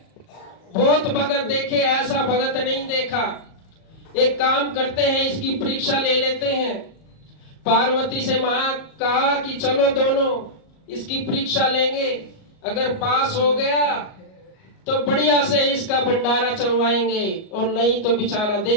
बहुत भगत देखे, ऐसा भगत नहीं देखा। एक काम करते हैं, इसकी परीक्षा ले लेते हैं। पार्वती से कहा कि चलो दोनों इसकी परीक्षा लेंगे, अगर पास हो गया तो बढ़िया से इसका भंडारा चलवाएंगे, और नहीं तो बेचारा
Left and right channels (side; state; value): right; late; 38 ms